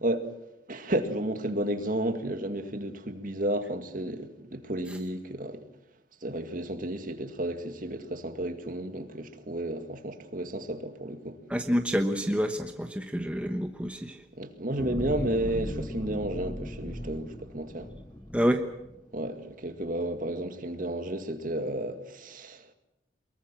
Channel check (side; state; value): both; normal; correlation 0.56